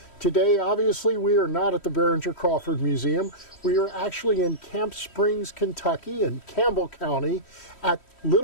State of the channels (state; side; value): late; right; 3.1 ms